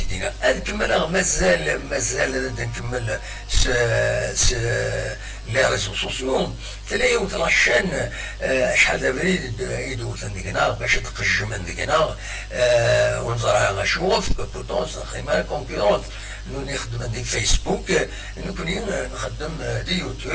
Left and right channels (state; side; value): identical; both; correlation 1.00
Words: دينا نكمل مازال نكمل les réseaux sociaux تلاقي وتلاشان شحال دابا يدوز عندنا باش تقج من عندنا ونزرع غنشوف بوتونس خيمه كونكورونت نخدم دي فيسبوك نكون نخدم دي